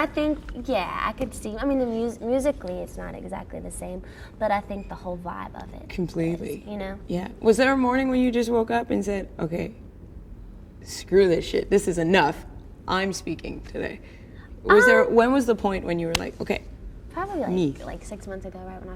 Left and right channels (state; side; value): identical; both; correlation 1.00